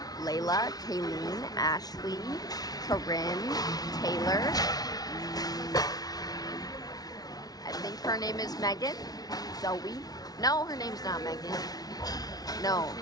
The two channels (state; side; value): late; right; 0.19 ms